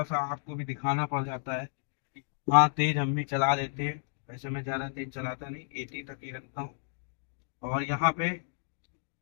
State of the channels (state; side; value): silent; right; digital silence